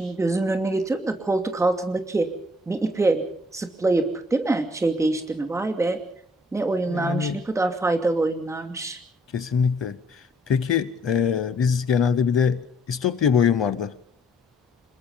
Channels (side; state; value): both; normal; correlation 0.65